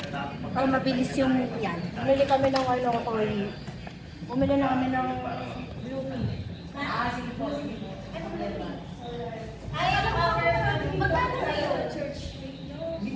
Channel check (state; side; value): identical; both; correlation 1.00